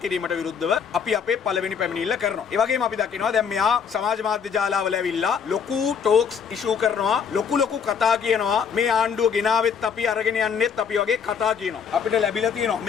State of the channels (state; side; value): quieter; right; 6.9 dB